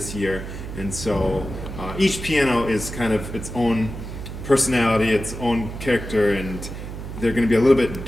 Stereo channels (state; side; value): noise; right; hum, 9 dB below the sound